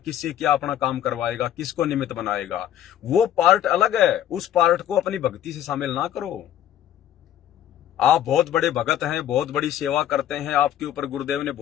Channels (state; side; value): quieter; right; 11.1 dB